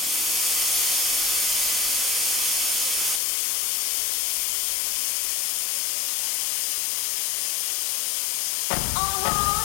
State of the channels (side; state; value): right; drops out; at 3.2 s